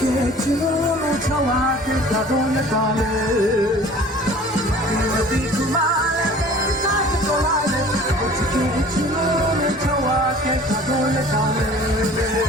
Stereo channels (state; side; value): normal; both; correlation 0.47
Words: चुनों छुआ के काटों ले डाले नदी घुमा ले पेंट साथ तोड़ा ले मुझके चुनों छुआ के काटों ले डाले